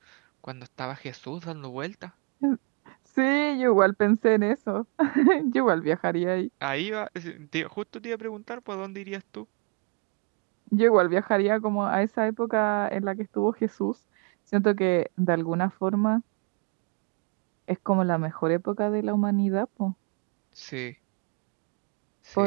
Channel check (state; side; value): quieter; left; 37.4 dB